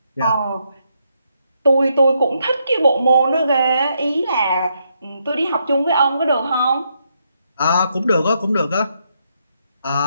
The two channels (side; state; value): both; inverted; correlation -0.78